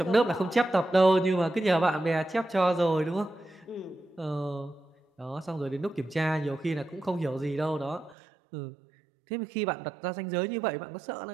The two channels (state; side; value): drops out; left; at 8.2 s